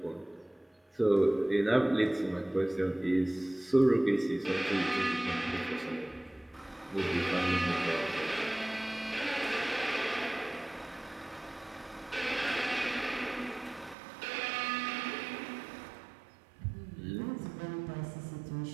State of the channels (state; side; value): drops out; left; at 14.0 s